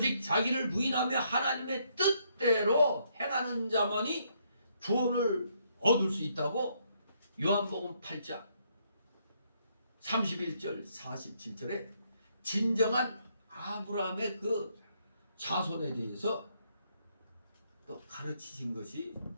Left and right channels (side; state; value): both; inverted; correlation -0.72